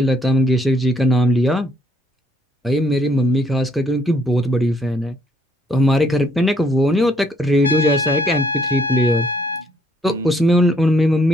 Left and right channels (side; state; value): both; normal; correlation 0.67